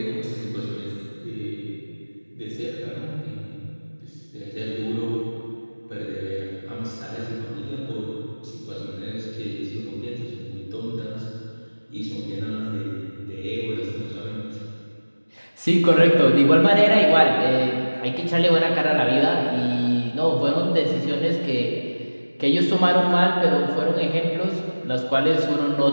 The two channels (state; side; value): inverted; both; correlation -1.00